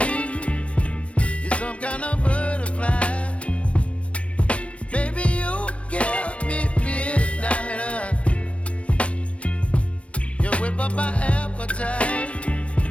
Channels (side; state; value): right; late; 0.062 ms